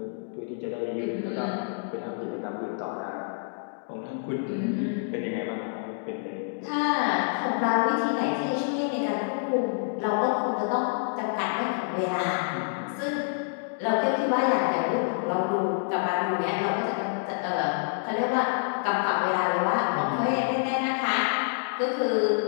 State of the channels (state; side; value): silent; right; digital silence